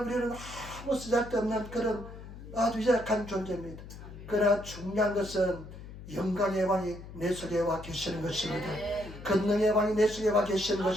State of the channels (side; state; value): left; noise; hum, 14 dB below the sound